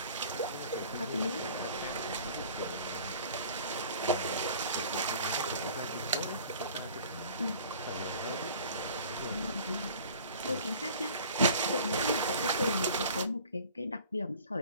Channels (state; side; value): inverted; both; correlation -0.47